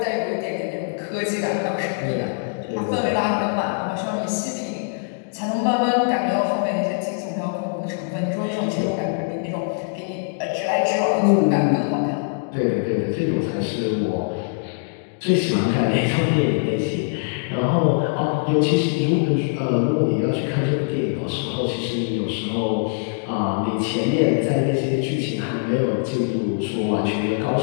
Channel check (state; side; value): silent; right; digital silence